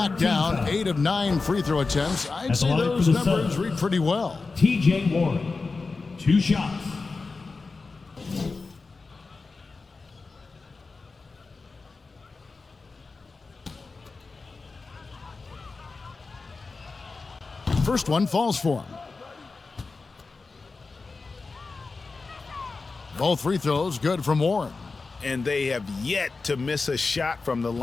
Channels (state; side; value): quieter; right; 4.1 dB